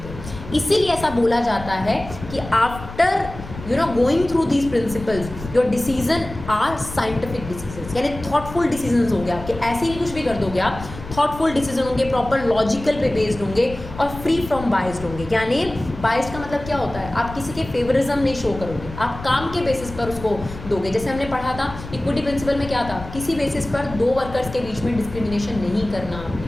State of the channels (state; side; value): noise; left; rumble, 12 dB below the sound